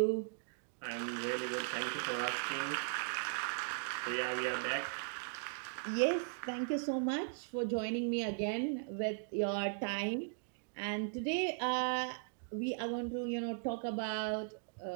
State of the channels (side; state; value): left; silent; digital silence